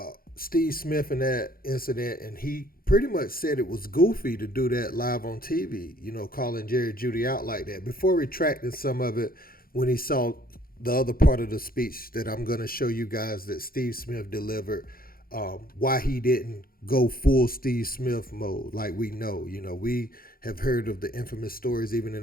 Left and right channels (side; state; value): right; late; 0.42 ms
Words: Steve Smith and that incident, and he pretty much said it was goofy to do that live on TV, calling Jerry Jeudy out like that, before retracting some of it when he saw the other part of the speech that I'm going to show you guys that Steve Smith delivered, why he didn't go full Steve Smith mode like we know. We have heard of the infamous stories even